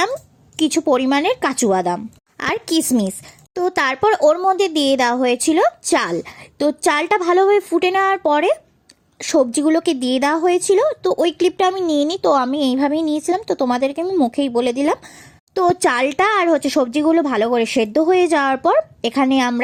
কিছু পরিমাণের কাজু বাদাম আর কিশমিশ। তো তারপর ওর মধ্যে দিয়ে দেওয়া হয়েছিল চাল। তো চালটা ভালোভাবে ফুটে নেওয়ার পরে সবজিগুলোকে দিয়ে দেওয়া হয়েছিল। তো ওই ক্লিপটা আমি নিয়ে নিই, তো আমি এইভাবেই নিয়েছিলাম, তো তোমাদেরকে আমি মুখেই বলে দিলাম। তো চালটা আর হচ্ছে সবজিগুলো ভালো করে সেদ্ধ হয়ে যাওয়ার পর এখানে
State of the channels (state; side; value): identical; both; correlation 1.00